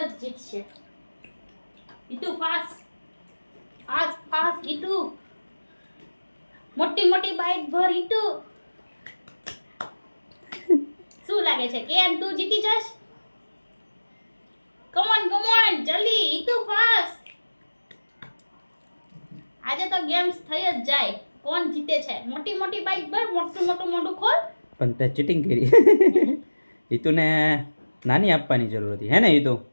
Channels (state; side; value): inverted; both; correlation -1.00